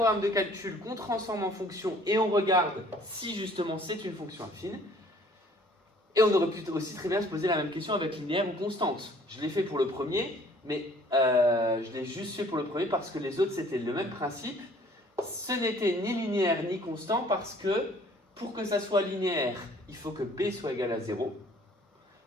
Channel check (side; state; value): both; normal; correlation 0.56